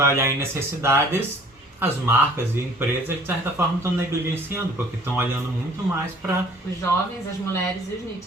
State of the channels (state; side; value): normal; both; correlation 0.53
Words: olhar em necessidades, as marcas e empresas de certa forma estão negligenciando, porque estão olhando muito mais para os jovens, as mulheres e os